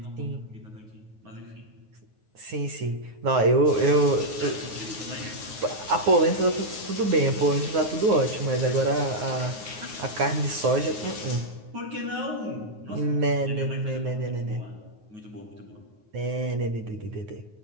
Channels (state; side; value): late; left; 9.5 ms